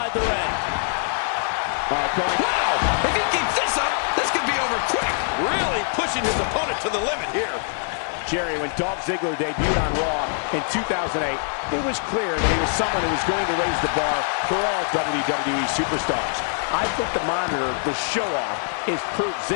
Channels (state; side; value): silent; right; 60 dB below the other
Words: the ring. Wow, if he keeps this up, this could be over quick. Really pushing his opponent to the limit here. Jerry, when Dolph Ziggler debuted on Raw in 2008, it was clear that he was someone who was going to raise the bar for all WWE superstars. I think the monitor, the show-off, is proof